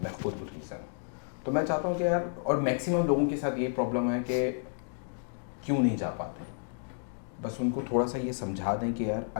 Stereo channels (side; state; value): right; silent; digital silence